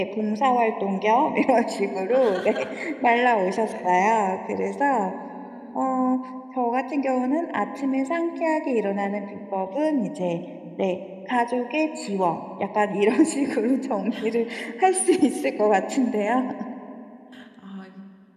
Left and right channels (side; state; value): both; identical; correlation 1.00